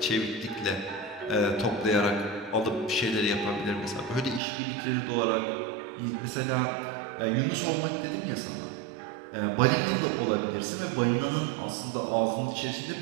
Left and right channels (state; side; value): drops out; left; at 4.4 s